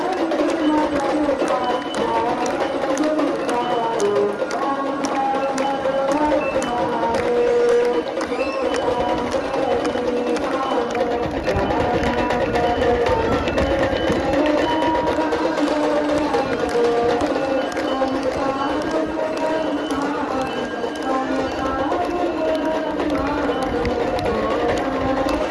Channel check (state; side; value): identical; both; correlation 1.00